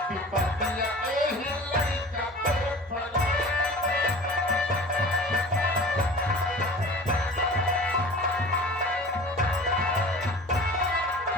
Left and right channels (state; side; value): normal; both; correlation 0.40